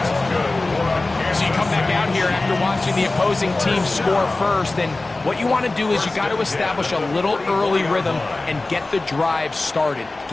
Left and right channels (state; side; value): quieter; right; 3.1 dB